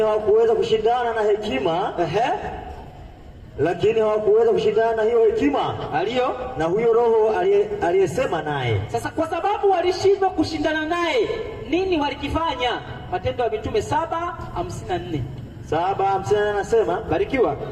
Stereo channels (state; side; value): identical; both; correlation 1.00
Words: hawakuweza kushindana na hekima. Lakini hawakuweza kushindana na hiyo hekima aliyo na huyo roho aliyesema naye. Sasa kwa sababu walishindwa kushindana naye, nini walikifanya? Matendo ya Mitume 7:54. 7:54 anasema, barikiwa.